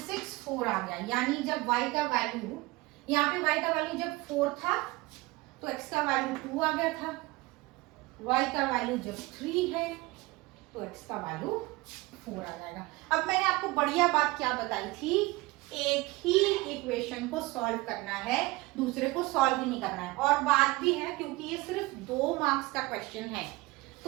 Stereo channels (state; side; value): quieter; left; 21.7 dB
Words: 6 4 आ गया, यानी जब y का वैल्यू, यहाँ पे y का वैल्यू जब 4 था तो x का वैल्यू 2 आ गया था, y का वैल्यू जब 3 है तो x का वैल्यू 4 आ जाएगा। अब मैंने आपको बढ़िया बात क्या बताई थी, एक ही इक्वेशन को सॉल्व करना है, दूसरे को सॉल्व ही नहीं करना है। और बात भी है क्योंकि ये सिर्फ 2 मार्क्स का क्वेश्चन है,